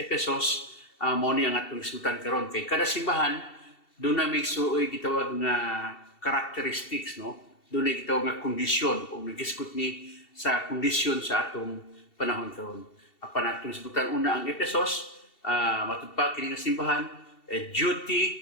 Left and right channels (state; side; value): late; right; 2.7 ms